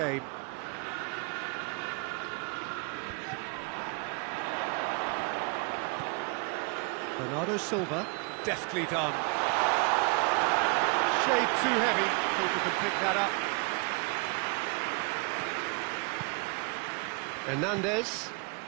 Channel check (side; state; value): left; quieter; 32.9 dB